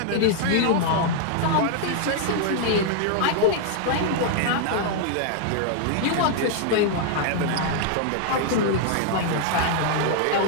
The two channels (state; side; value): different; both; correlation 0.00